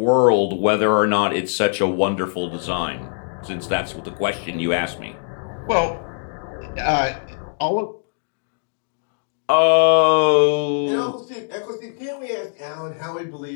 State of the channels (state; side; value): silent; right; digital silence